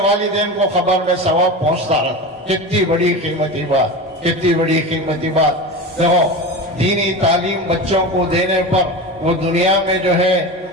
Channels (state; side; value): normal; both; correlation 0.27